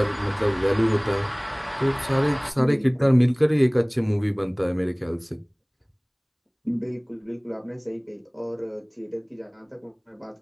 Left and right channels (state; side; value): identical; both; correlation 1.00